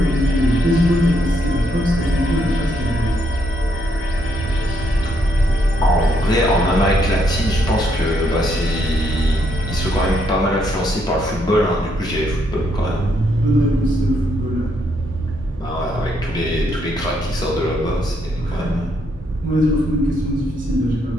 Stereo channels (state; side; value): normal; both; correlation 0.75